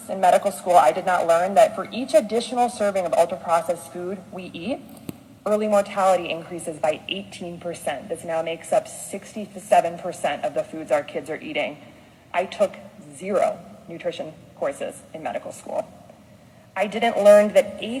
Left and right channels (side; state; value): both; identical; correlation 1.00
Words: in medical school, I did not learn that for each additional serving of ultra-processed food we eat, early mortality increases by 18%. This now makes up 67% of the foods our kids are eating. I took 0 nutrition courses in medical school. I didn't learn that